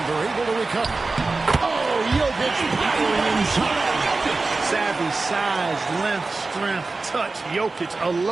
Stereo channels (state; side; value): quieter; left; 3.6 dB